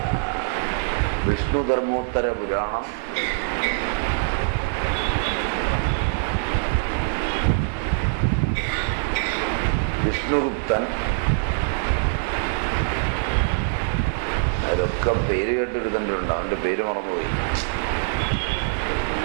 വിഷ്ണുധർമ്മോത്തര പുരാണം, വിഷ്ണുഗുപ്തൻ, അതൊക്കെ പേര് കേട്ടെടുത്തിട്ടുണ്ട്. അവൻ്റെ പേര് മറന്നുപോയി,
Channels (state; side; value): silent; left; 63 dB below the other